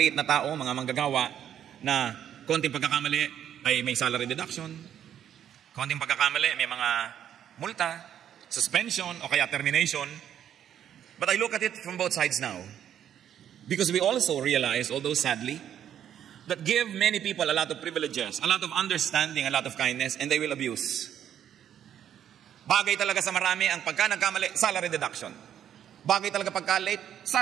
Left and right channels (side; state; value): left; quieter; 9.9 dB